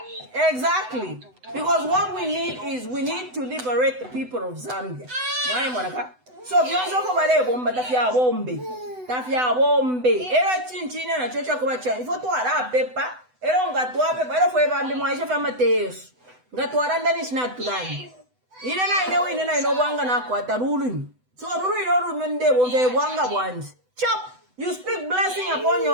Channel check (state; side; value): late; left; 8.0 ms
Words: Exactly. Because what we need is we need to liberate the people of Zambia. So vyonso ko bale bomba tafya bombe. Era chinchina na chocha ko bacha. Ifo to ara pepa. Era ngatwa pepa. Era foi bambi mwaisha fa Mateus. Ngatwa ndani snack tudani. Ine na ino bwanga na kwata rulu. So rulu ino mende bonge bwanga bwanzi. Chop. You speak blessing upon